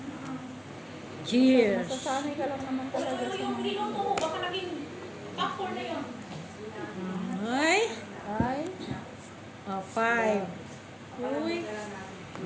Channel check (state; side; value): identical; both; correlation 1.00